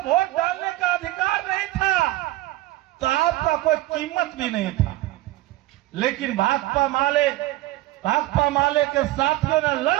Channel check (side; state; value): left; quieter; 17.1 dB